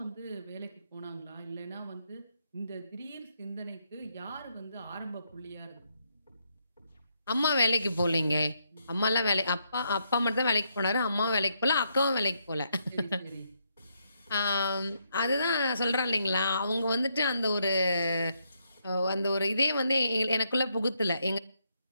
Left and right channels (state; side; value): inverted; both; correlation -0.77